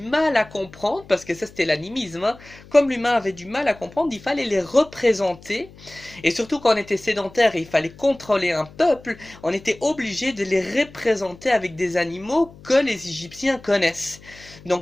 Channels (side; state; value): left; noise; hum, 22 dB below the sound